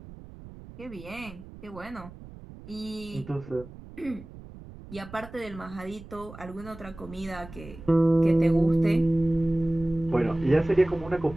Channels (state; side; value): noise; right; rumble, 17 dB below the sound